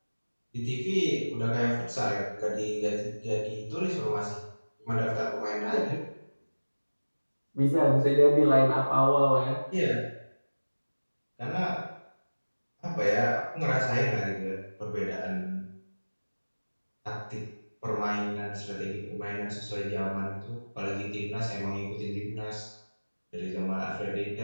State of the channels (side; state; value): both; inverted; correlation -1.00